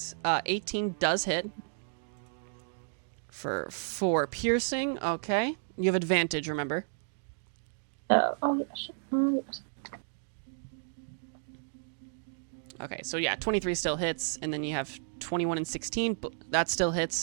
18 does hit for 4 piercing. Okay. You have advantage. Remember. Oh yes. Yes. Okay. So yeah, 23 still hits, and then you have 21 and 16. But that still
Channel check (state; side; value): silent; left; digital silence